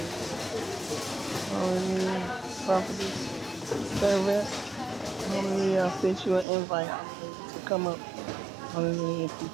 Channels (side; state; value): left; drops out; at 6.5 s